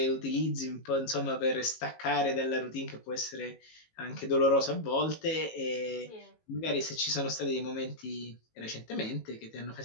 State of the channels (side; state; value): right; late; 18 ms